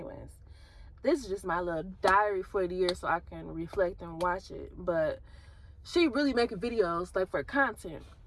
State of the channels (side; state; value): both; identical; correlation 1.00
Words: This is just my little diary for the year so I can reflect and watch it. But she really making videos like for content.